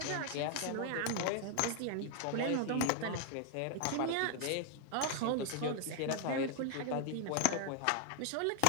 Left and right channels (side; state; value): both; different; correlation 0.00